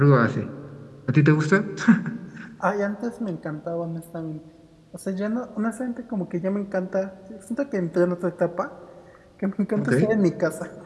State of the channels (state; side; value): identical; both; correlation 1.00